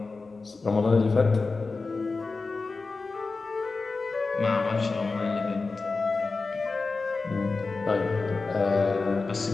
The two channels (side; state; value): right; quieter; 4.0 dB